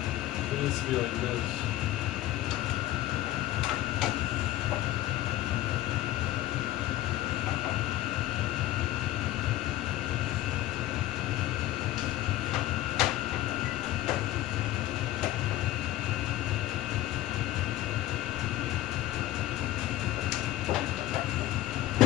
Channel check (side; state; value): right; quieter; 14.9 dB